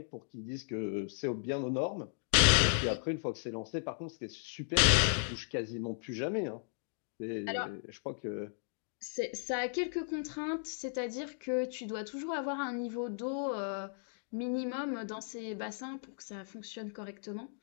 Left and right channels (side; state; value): right; silent; digital silence